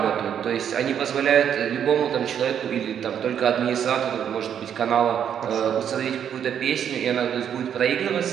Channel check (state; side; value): quieter; left; 8.8 dB